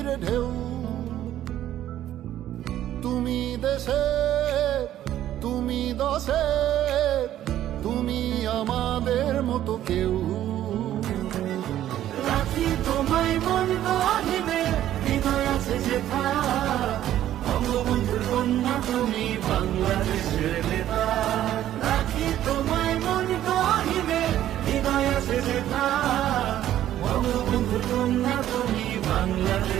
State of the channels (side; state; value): left; quieter; 12.3 dB